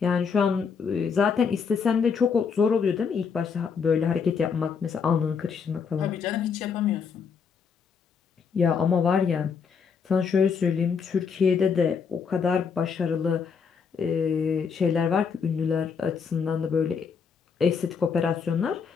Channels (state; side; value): quieter; right; 6.0 dB